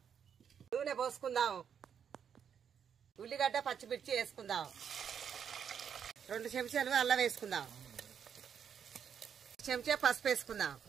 నూనె పోసుకుందాం. ఉల్లిగడ్డ పచ్చిమిర్చి వేసుకుందాం. 2 చెంచాలు అల్లం వేసుకుందాం. చెంచా పసుపు వేసుకుందాం.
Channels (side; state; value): left; quieter; 7.8 dB